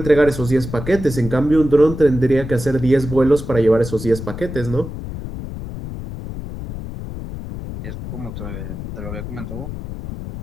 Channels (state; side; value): noise; left; rumble, 9 dB below the sound